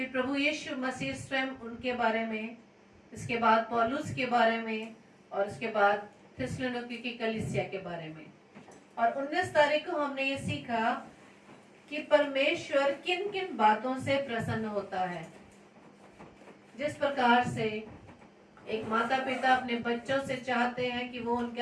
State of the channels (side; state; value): both; identical; correlation 1.00